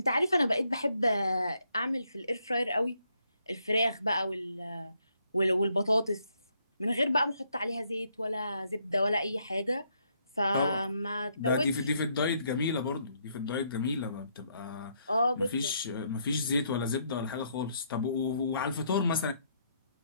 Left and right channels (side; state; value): both; inverted; correlation -0.73